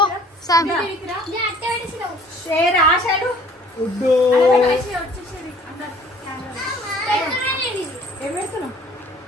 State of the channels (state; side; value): normal; both; correlation 0.53